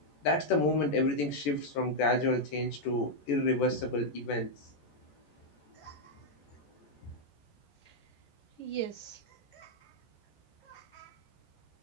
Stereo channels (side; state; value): right; late; 14 ms